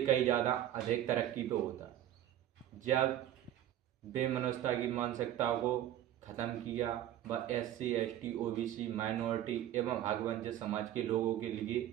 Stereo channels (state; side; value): quieter; left; 12.2 dB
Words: ज़्यादा अधिक तरक्की पे होता। जब बेमनस्ता की मानसिकता को ख़त्म किया, व SC, ST, OBC, माइनॉरिटी एवं हकवंचित समाज के लोगों के लिए